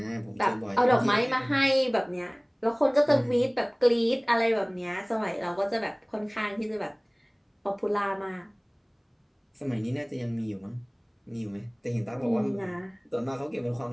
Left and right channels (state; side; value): identical; both; correlation 1.00